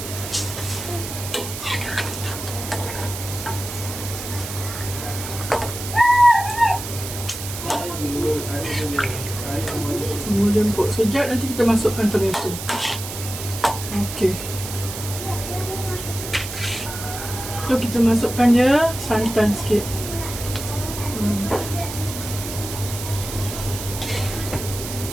Kemudian empuk sekejap, nanti kita masukkan tomato. Okey. So kita masukkan dia santan sikit.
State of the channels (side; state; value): right; noise; hiss, 8 dB below the sound